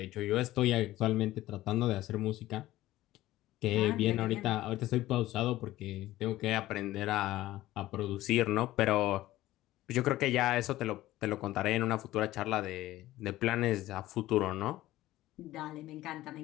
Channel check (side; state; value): right; quieter; 15.9 dB